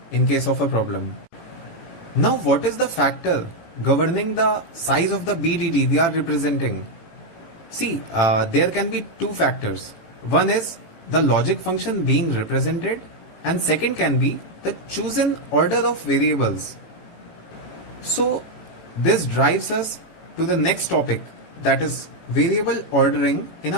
in case of a problem. Now, what is the factor governing the size of the BDD we are representing? See, there can be two factors. One is the logic function being represented, and second can be the chosen order of variables. So, this drives us to the next topic, that is variable ordering in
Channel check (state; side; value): late; right; 18 ms